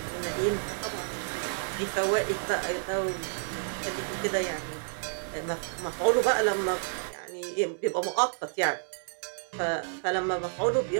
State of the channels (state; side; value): silent; left; digital silence